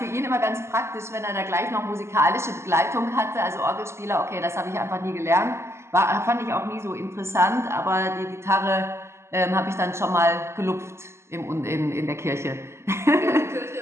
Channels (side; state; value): left; late; 0.13 ms